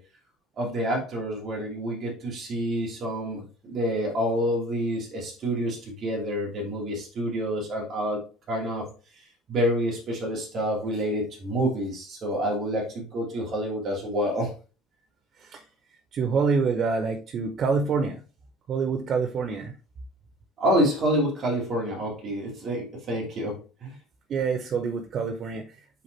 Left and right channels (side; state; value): both; normal; correlation 0.45